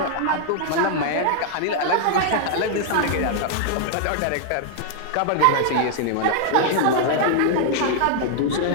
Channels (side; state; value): both; different; correlation -0.01